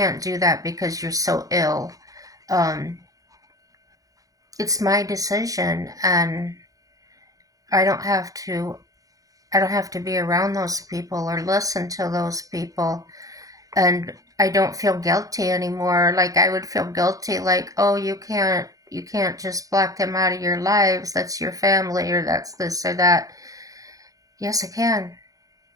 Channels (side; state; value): left; late; 0.17 ms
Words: do that because you're so ill. Um, it's my decision, and I don't have to. I don't have to be around those people or listen to those people, and I don't feel guilty anymore. Like I would feel guilty, like, oh, you can't just block them out of your lives. That's your family, or that's this or that. Yes, I can.